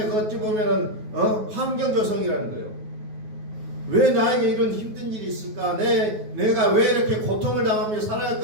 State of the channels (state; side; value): late; left; 9.3 ms